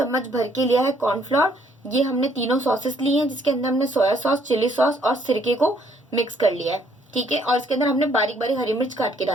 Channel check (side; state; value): both; normal; correlation 0.66